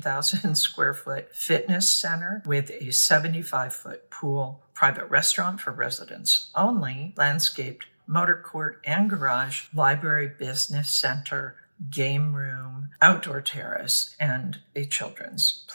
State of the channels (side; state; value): both; inverted; correlation -1.00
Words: square foot fitness center with a 75-foot pool, private restaurant for residents only, landscaped motor court and garage, library, business center, game room, outdoor terrace, and a children's